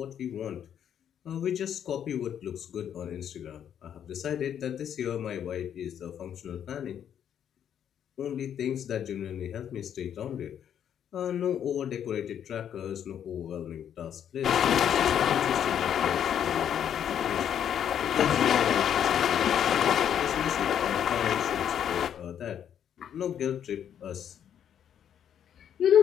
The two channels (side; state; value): right; quieter; 9.2 dB